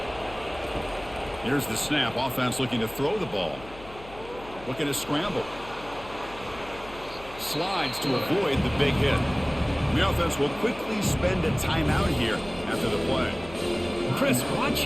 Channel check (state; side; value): noise; left; hum, 18 dB below the sound